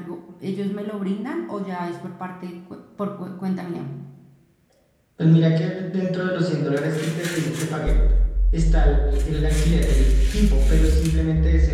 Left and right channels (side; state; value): both; identical; correlation 1.00